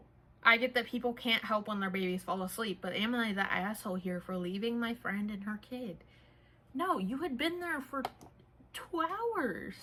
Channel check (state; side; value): identical; both; correlation 1.00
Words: I get that people can't help when their babies fall asleep, but am I the asshole here for leaving my friend and her kid? No, you had been there for 2